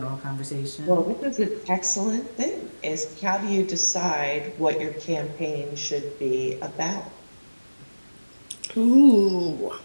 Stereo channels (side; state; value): both; inverted; correlation -1.00